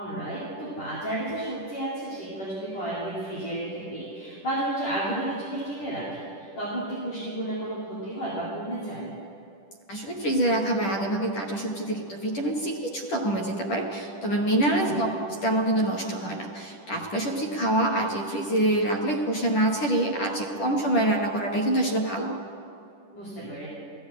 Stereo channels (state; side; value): late; right; 10 ms